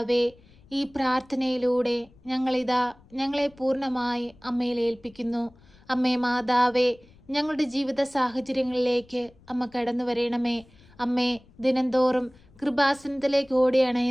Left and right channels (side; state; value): left; noise; rumble, 27 dB below the sound